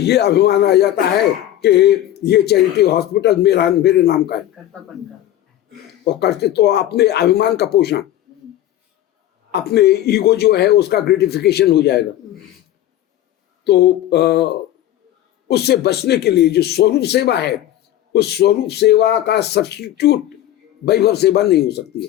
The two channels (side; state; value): right; quieter; 12.9 dB